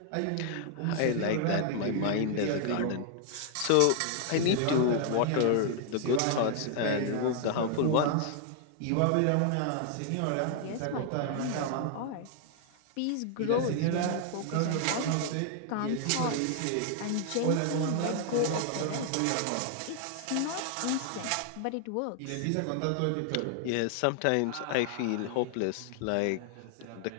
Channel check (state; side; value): different; both; correlation 0.00